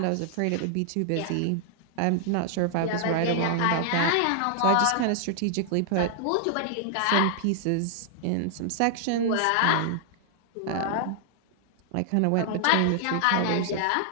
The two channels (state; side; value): different; both; correlation -0.01